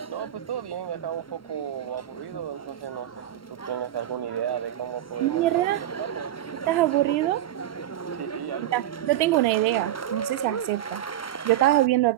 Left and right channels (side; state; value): left; quieter; 12.2 dB